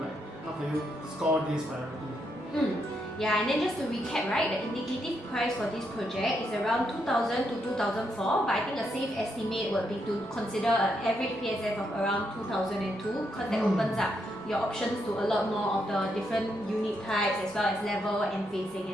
how can you score this priority. Yeah, and then just to recap, right, the indicative price for this project is around 2,000 to 2,004, but I think a safe estimate would be to consider an average PSF of around 2,002 because that opens up your options to a lot more of the different unit types as well as level and facing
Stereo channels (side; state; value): right; noise; rumble, 27 dB below the sound